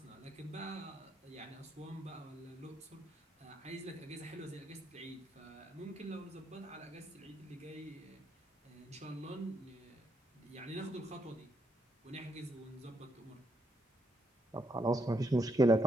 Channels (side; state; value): both; normal; correlation 0.77